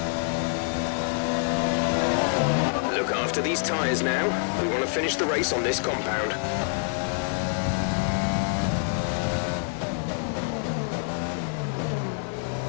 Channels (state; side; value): silent; right; 61 dB below the other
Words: Look after these tyres now. We want to finish the race on this compound.